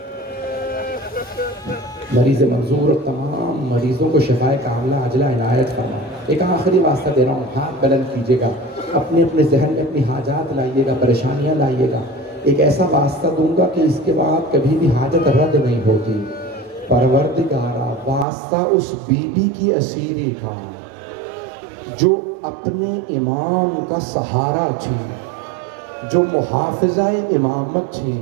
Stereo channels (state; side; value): drops out; left; at 18.2 s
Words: مریض منظور اور تمام مریضوں کو شفائے کاملہ عاجلہ عنایت فرما۔ ایک آخری واسطہ دے رہا ہوں، ہاتھ بلند کیجیے گا، اپنے ذہن میں اپنی حاجات لائیے گا، پریشانیاں لائیے گا۔ ایک ایسا واسطہ دوں گا کہ اس کے بعد کبھی بھی حاجت رد نہیں ہوتی۔ پروردگارا واسطہ اس بی بی کی اسیری کا جو اپنے امام کا سہارا تھی، جو محافظہ امامت تھی۔